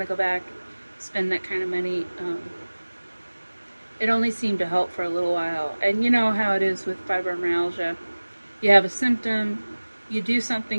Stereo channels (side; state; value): both; inverted; correlation -1.00